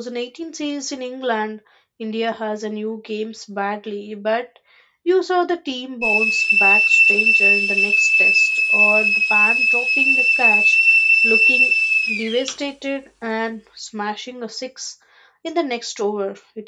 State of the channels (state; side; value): identical; both; correlation 1.00